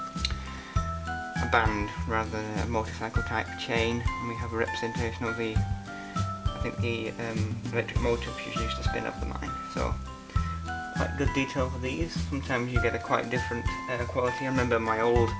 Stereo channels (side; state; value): both; identical; correlation 1.00